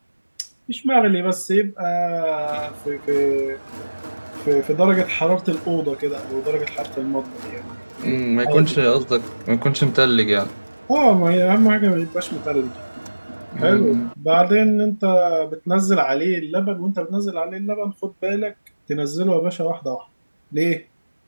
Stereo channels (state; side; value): inverted; both; correlation -1.00